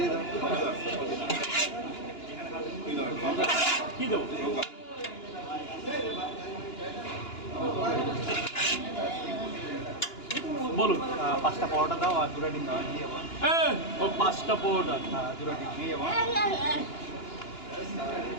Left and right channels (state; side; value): late; right; 2.9 ms